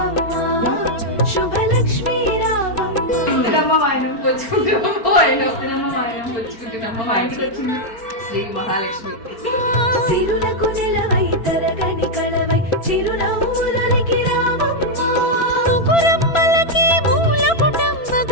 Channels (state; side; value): late; right; 4.4 ms